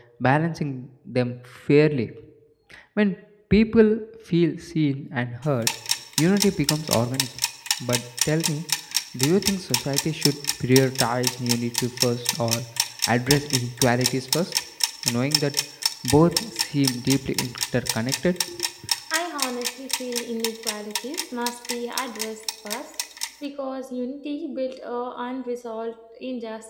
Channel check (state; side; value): identical; both; correlation 1.00